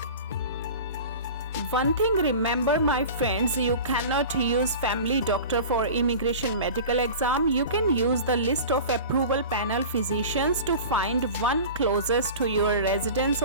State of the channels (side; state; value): both; inverted; correlation -0.36